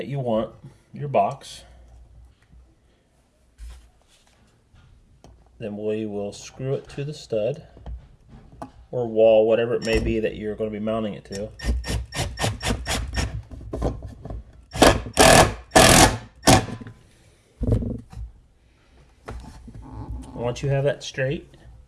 you want, your box. Then we will screw it to the stud or wall, whatever it may be that you're going to be mounting it to. Once you have that straight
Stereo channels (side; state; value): both; identical; correlation 1.00